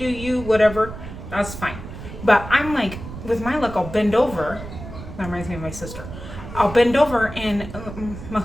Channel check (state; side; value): noise; right; rumble, 11 dB below the sound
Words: you, whatever, that's fine. But I'm like, with my look, I'll bend over. That reminds me of my sister. I'll bend over and my